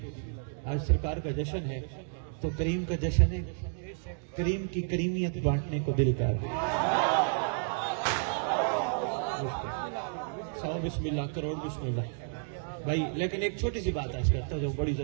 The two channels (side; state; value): left; silent; digital silence